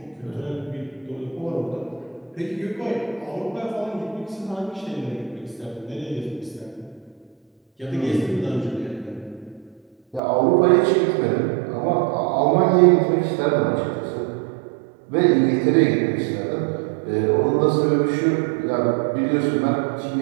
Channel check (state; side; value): drops out; left; at 10.2 s